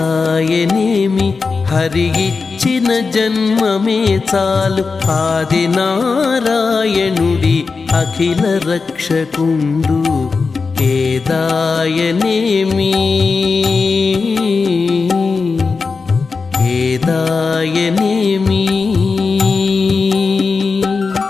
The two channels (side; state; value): right; quieter; 4.6 dB